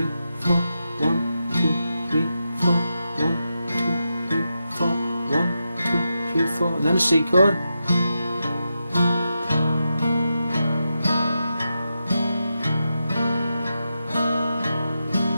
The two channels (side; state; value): both; inverted; correlation -0.88